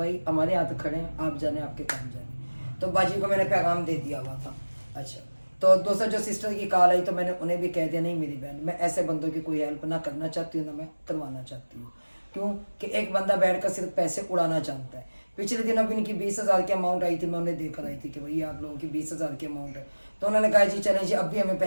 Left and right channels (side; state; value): both; inverted; correlation -1.00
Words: हमारे हाथ खड़े हैं, आप जाने आपके काम जाने। तो बाजी को मैंने पैगाम दे दिया हुआ था। अच्छा, तो दूसरा जो सिस्टर की कॉल आई तो मैंने उन्हें भी कह दिया, नहीं मेरी बहन मैं ऐसे बंदों की कोई हेल्प ना करना चाहती हूँ ना मैं करवाना चाहती हूँ। क्यों कि एक बंदा बैठकर सिर्फ पैसे उड़ाना जानता है। पिछले दिन अभी इनकी 20,000 की अमाउंट आई थी, मैं उन्हें देकर आई थी कि भाई आप लोगों की 20,000 की अमाउंट है। तो उन्होंने कहा जी चलें जी, अब भी हमें